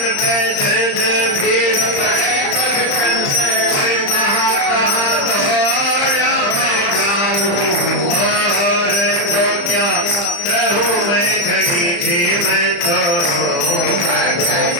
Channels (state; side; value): late; right; 35 ms